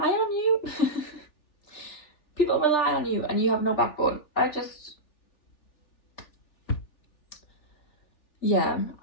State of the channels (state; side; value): late; right; 3.4 ms